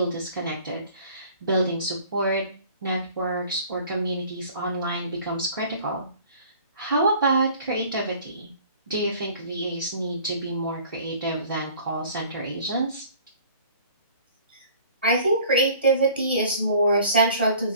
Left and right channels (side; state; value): both; inverted; correlation -0.50